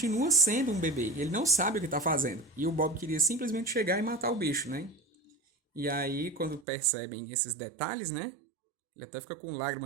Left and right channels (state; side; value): drops out; left; at 6.6 s